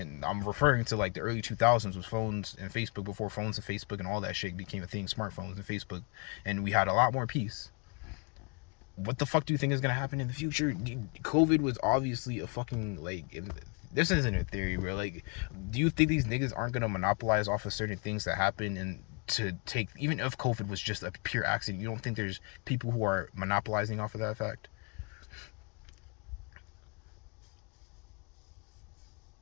I'm referring to like the early 2000s with phones and Facebook, before phones and Facebook and all that shit became a thing, smartphones and Facebook, and we had a lot more peace. What the fuck do you think is gonna happen in the future? COVID was obviously a fucking, like, this isn't a theory, bro. Like, do you think these niggas aren't gonna monopolize off of certain things that happen, and to take, even if COVID was just a pure accident, you don't think there's people who are monopolizing off of that fact?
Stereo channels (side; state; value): right; quieter; 33.7 dB